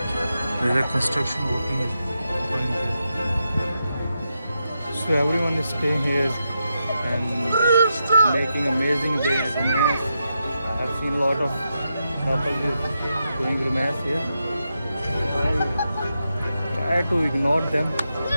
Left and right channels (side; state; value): both; inverted; correlation -0.86